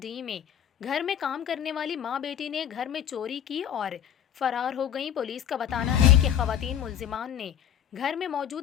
میں گھر میں کام کرنے والی ماں بیٹی نے گھر میں چوری کی اور فرار ہو گئیں۔ پولیس کا بتانا ہے کہ خواتین ملزمان نے گھر میں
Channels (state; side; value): quieter; right; 9.8 dB